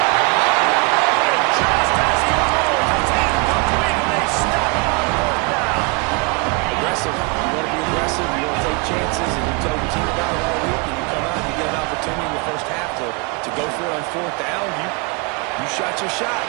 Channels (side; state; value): left; quieter; 30.4 dB